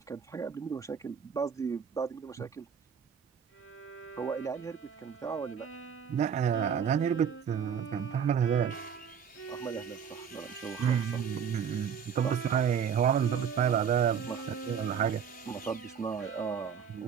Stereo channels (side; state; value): left; quieter; 7.5 dB